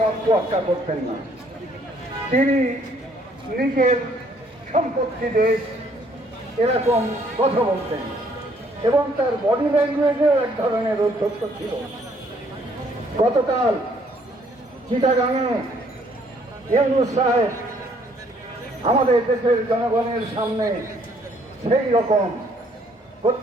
তোয়াক্কা করতেন না, তিনি নিজের সম্পত্তি দেশ এরকম কথা বলতেন এবং তার বডি ল্যাঙ্গুয়েজেও এক ধরনের উদ্ধত্ত ছিল। গতকাল চিটাগাঙে ইউনূস সাহেব আমাদের দেশের জনগণের সামনে সেই রকম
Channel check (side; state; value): both; normal; correlation 0.64